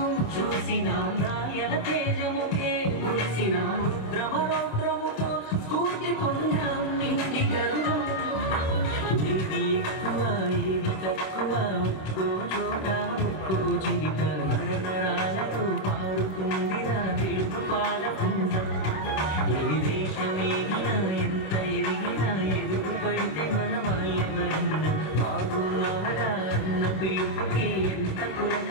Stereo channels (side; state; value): right; late; 26 ms